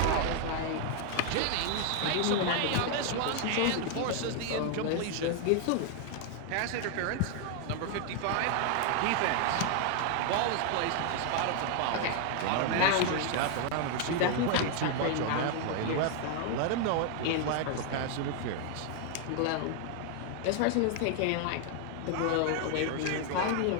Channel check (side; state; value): both; different; correlation 0.00